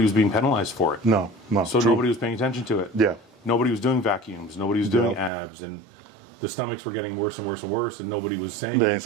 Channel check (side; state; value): left; drops out; at 5.3 s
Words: was being penalized for it. No. So nobody was paying attention to it. Yeah. Nobody was doing vacuums. Nobody was doing abs, and the stomachs were getting worse and worse and worse, and nobody was saying